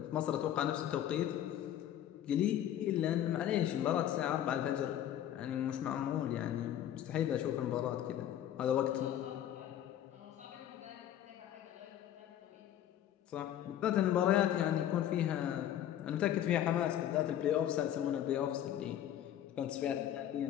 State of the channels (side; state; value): right; quieter; 11.2 dB